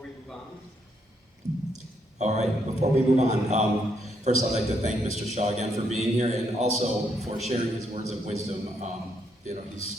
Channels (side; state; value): both; normal; correlation 0.76